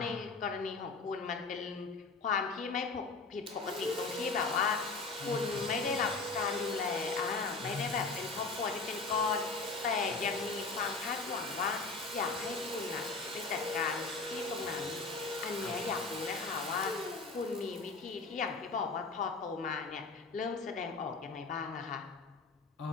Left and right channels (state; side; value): quieter; right; 4.0 dB